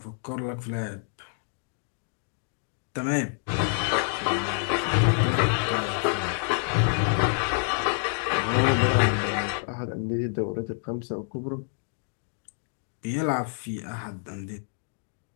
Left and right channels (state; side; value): silent; right; digital silence